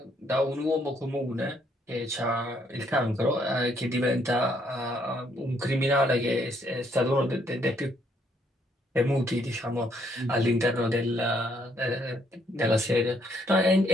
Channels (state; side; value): normal; both; correlation 0.70